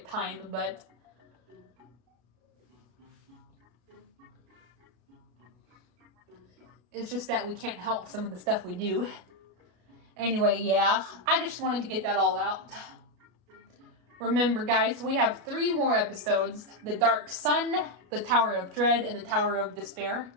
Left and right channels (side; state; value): left; late; 33 ms